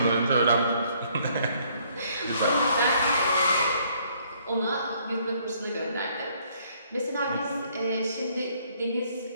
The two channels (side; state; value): both; inverted; correlation -0.65